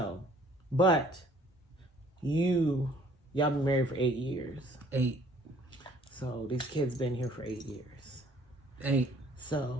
but y'all been married for 8 years. 8. So these kids been here for 8 years. 8.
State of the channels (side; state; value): both; normal; correlation 0.58